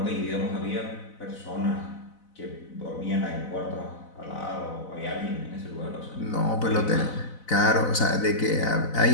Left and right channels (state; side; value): late; right; 4.0 ms